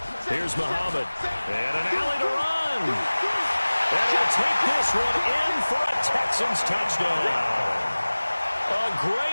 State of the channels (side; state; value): both; inverted; correlation -1.00